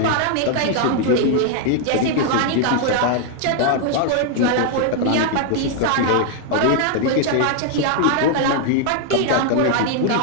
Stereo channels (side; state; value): both; different; correlation 0.00